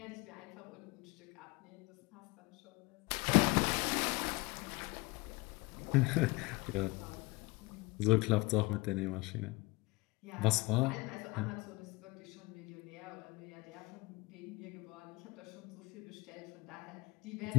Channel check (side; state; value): right; quieter; 23.8 dB